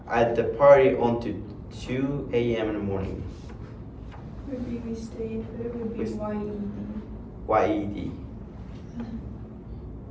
at the party until 2 a.m. in the morning. Would be we stayed, but it would be We- YED.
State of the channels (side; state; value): both; identical; correlation 1.00